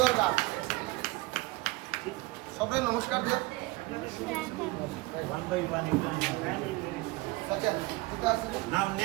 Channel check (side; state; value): left; quieter; 22.0 dB